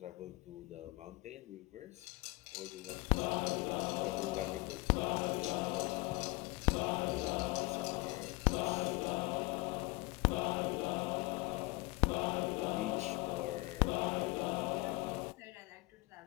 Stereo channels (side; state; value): right; quieter; 24.2 dB